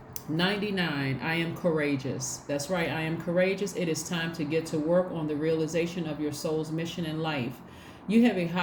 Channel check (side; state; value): both; identical; correlation 1.00